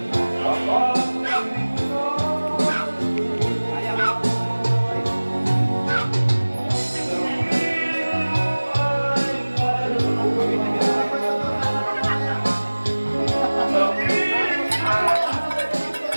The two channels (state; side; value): inverted; both; correlation -1.00